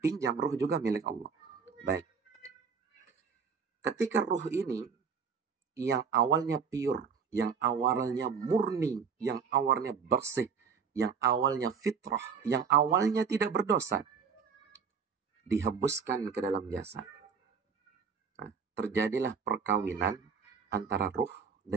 ruh juga milik Allah. Baik. Ketika ruh ini yang awalnya pure, yang awalnya murni, yang awalnya bersih, yang awalnya fitrah, yang awalnya tidak berdosa, dihembuskan ke dalam jasad. Nah, terjadilah perkawinan antara ruh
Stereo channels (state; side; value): quieter; left; 6.1 dB